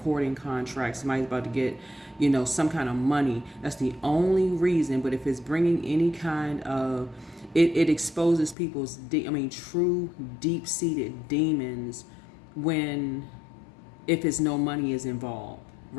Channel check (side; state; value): right; drops out; at 8.6 s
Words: contract, somebody's about to get some kind of money. That's the only reason. But if it's bringing any kind of it exposes people's true deep-seated demons if it's no money is involved,